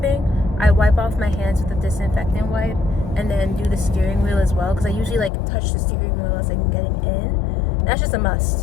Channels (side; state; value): right; drops out; at 5.3 s